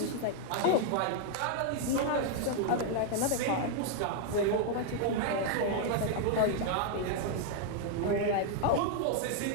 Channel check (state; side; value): different; both; correlation 0.00